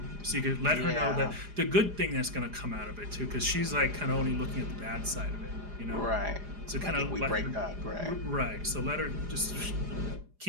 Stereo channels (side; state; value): left; late; 4.9 ms